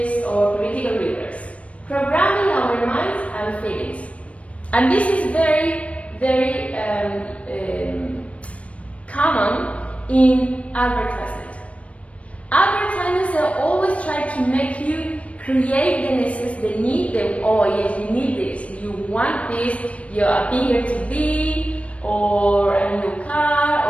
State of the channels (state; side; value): late; right; 0.064 ms